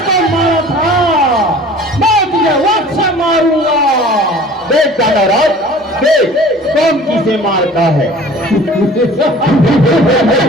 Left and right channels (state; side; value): normal; both; correlation 0.46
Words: मारा था, मैं तुझे वक्त से मारूंगा। देख दानवराज, देख कौन किसे मारता है।